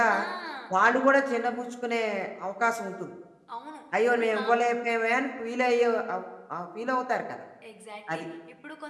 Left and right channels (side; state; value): both; identical; correlation 1.00